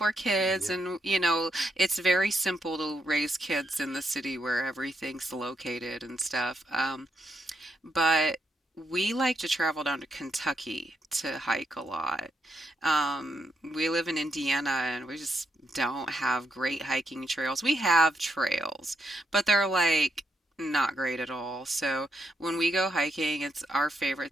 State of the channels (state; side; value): normal; both; correlation 0.80